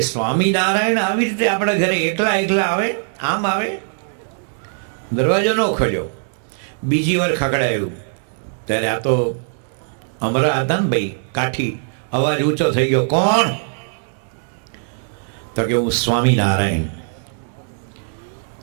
સ્વામિનારાયણ આવી રીતે આપણા ઘરે એકલા આવે, આમ આવે? દરવાજો ન ખોલ્યો. બીજી વાર ખકડાયું ત્યારે આ તો અમરા હતા ને ભાઈ, કાઠી. અવાજ ઊંચો થઈ ગયો, કોણ? તો કે હું સ્વામિનારાયણ.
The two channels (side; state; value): left; silent; digital silence